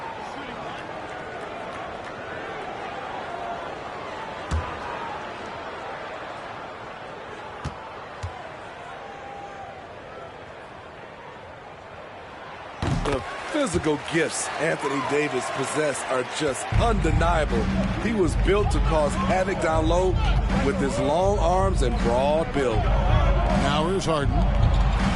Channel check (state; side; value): identical; both; correlation 1.00